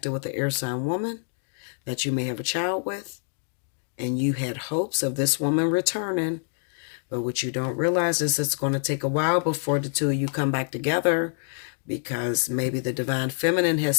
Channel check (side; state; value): right; silent; digital silence